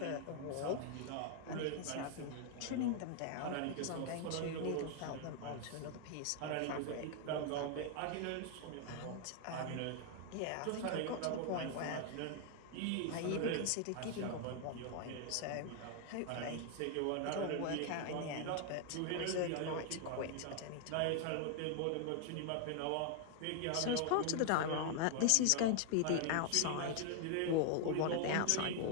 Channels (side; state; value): both; different; correlation 0.00